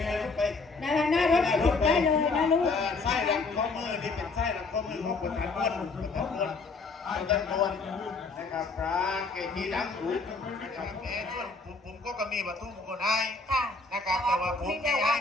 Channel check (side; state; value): right; quieter; 3.9 dB